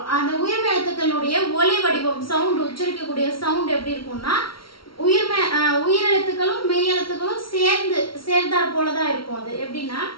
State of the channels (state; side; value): late; right; 0.74 ms